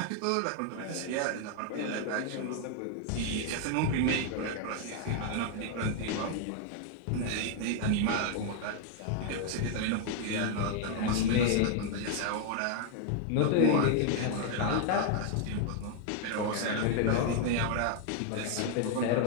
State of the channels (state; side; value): different; both; correlation 0.00